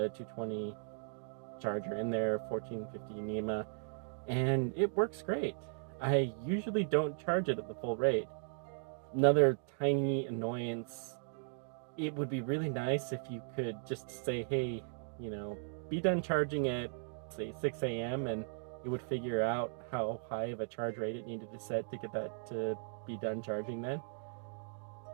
220 charger in there, 1450 NEMA, and it works great. I usually don't charge it at the full rate. Another tiny annoyance, it would be really nice if you could just say, hey, be done charging at, say, 6 a.m. and it would figure out how high of a charge rate it needed to set to get that to be done charging then.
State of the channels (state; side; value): silent; left; digital silence